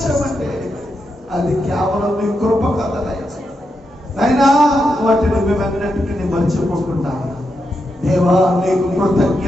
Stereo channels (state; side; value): normal; both; correlation 0.85